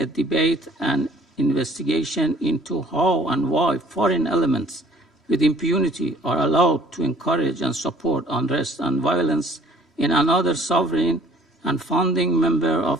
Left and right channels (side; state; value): both; normal; correlation 0.55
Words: debate and investigation into how and why foreign elements with impunity are allowed to encourage and support unrest and violence in another sovereign and founding member